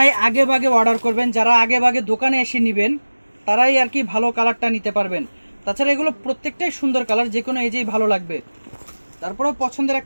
আগে ভাগে অর্ডার করবেন, যারা আগে ভাগে দোকানে এসে নেবেন, তারাই আর কি ভালো কালারটা নিতে পারবেন। তাছাড়া এগুলো প্রত্যেকটাই সুন্দর কালার, যে কোনো এজেই ভালো লাগবে। তারপরেও পছন্দের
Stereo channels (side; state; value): both; inverted; correlation -1.00